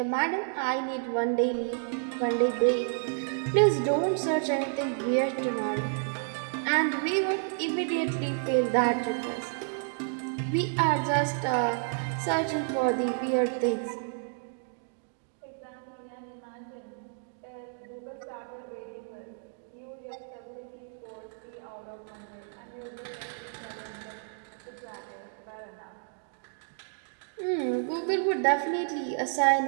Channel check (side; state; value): left; silent; digital silence